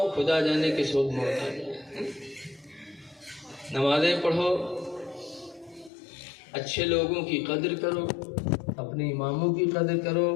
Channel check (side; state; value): right; drops out; at 5.9 s